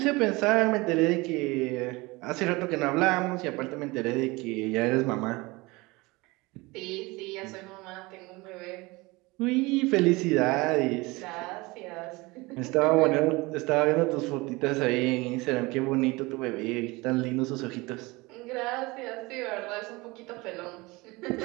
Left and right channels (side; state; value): left; quieter; 23.3 dB